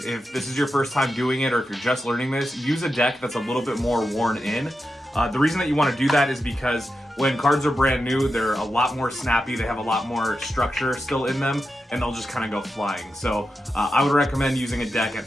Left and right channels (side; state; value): both; normal; correlation 0.89